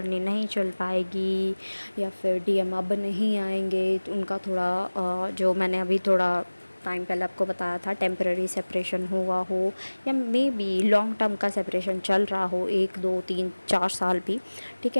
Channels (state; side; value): inverted; both; correlation -1.00